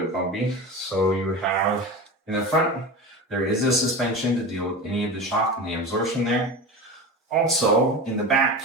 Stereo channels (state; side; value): normal; both; correlation 0.28